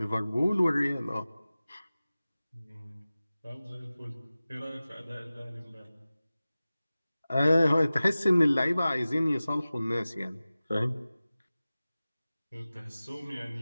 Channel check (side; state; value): both; inverted; correlation -0.97